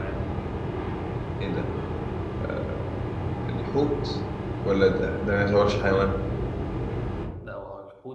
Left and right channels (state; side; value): identical; both; correlation 1.00